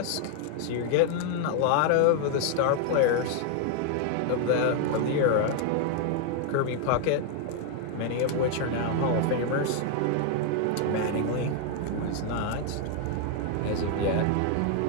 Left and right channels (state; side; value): different; both; correlation 0.00